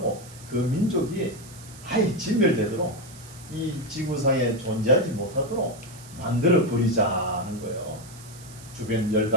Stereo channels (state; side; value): noise; right; hiss, 19 dB below the sound